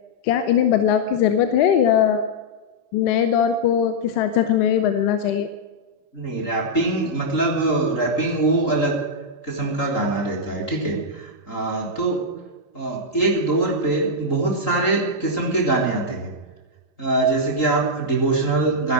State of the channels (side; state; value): right; late; 3.8 ms